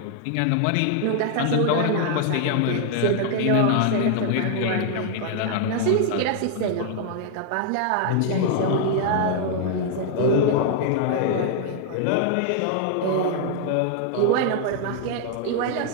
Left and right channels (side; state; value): both; different; correlation 0.00